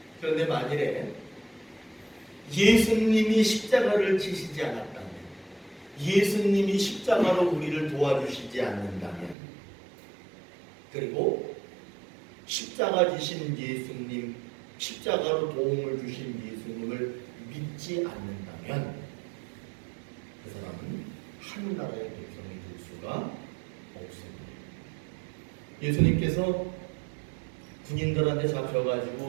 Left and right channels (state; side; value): drops out; left; at 9.3 s